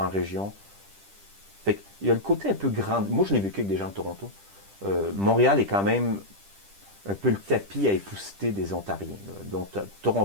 région. Fait qu'il y a le côté un peu grand. Moi, je l'ai vécu avec des gens de Toronto. Montréal est quand même un peu le tapis à épousseter des Ontariens. Là. Donc,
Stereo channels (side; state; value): left; late; 10 ms